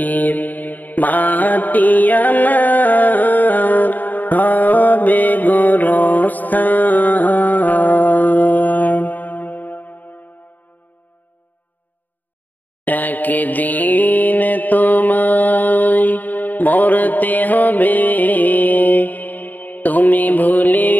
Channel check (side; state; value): right; late; 0.084 ms